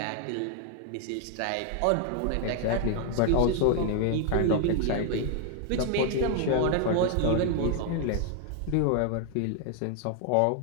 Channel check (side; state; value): both; different; correlation 0.00